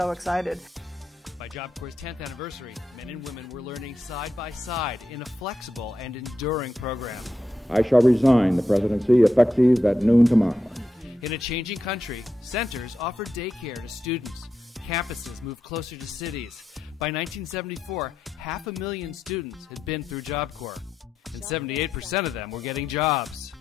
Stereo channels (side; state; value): both; normal; correlation 0.86